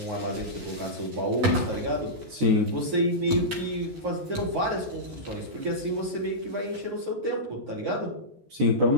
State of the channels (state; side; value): late; left; 14 ms